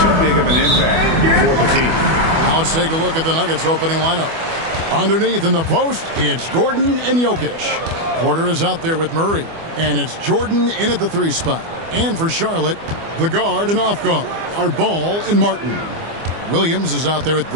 big of an impact for the team. Now let's take a look at the Nuggets opening lineup. Underneath in the post, it's Gordon and Jokic. Porter is out there with Murray. And it's Jordan in at the 3 spot. And for Charlotte, the guard and off guard are Ball and Martin. Williams is out there with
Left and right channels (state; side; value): late; left; 24 ms